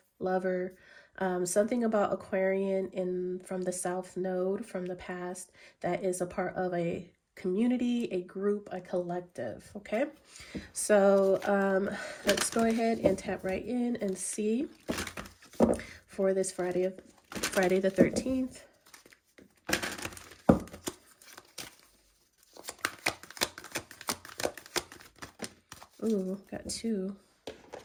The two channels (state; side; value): identical; both; correlation 1.00